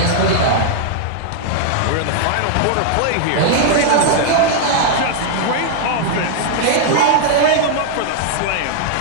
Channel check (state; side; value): different; both; correlation 0.00